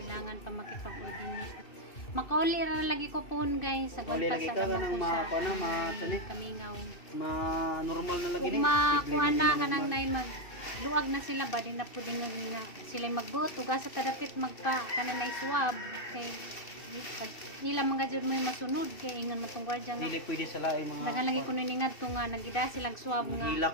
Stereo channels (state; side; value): late; right; 2.7 ms